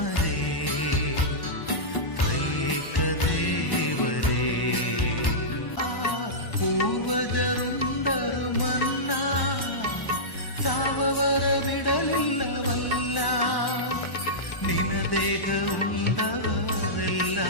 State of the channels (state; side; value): late; right; 1.1 ms